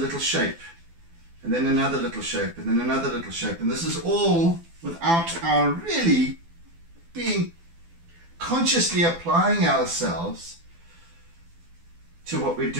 shape, and then another little shape, and then another little shape, and this is all without our really being consciously applying ourselves to what we're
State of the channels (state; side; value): late; left; 12 ms